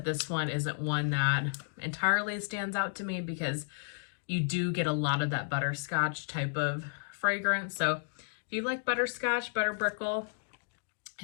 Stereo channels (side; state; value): right; silent; digital silence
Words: this one isn't one that entirely stands out to me because you do get a lot of that butterscotch type of fragrance. So if you like butterscotch, butter brickle,